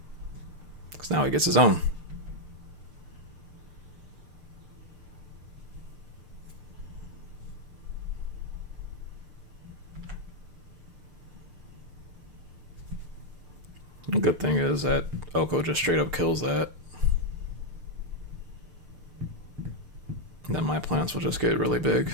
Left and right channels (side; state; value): left; late; 6.7 ms